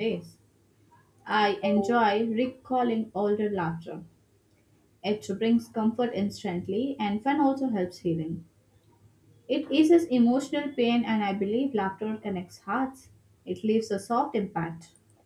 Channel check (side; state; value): both; identical; correlation 1.00